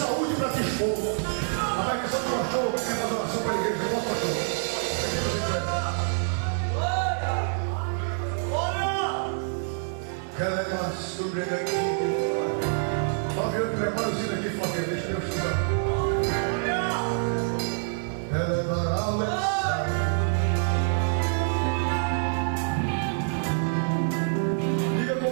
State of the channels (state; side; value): silent; left; 55 dB below the other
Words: para te expor. A maldição do pastor quer fazer oração para a igreja. Não, pastor. Ela é sobre daqui. Flaviano, prepara o sino aqui, Flaviano. Deixa eu estudar. Ela é maravilhosa. Diga